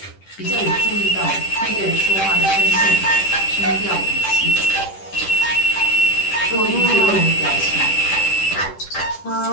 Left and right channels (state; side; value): late; right; 10 ms